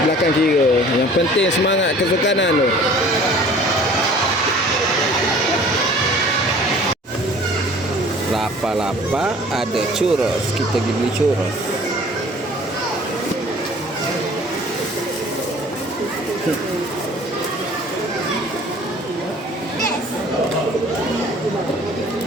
belakang kira. Yang penting semangat kesukanan tu. Lapa-lapa ada churros. Kita pergi beli churros.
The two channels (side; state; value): both; normal; correlation 0.49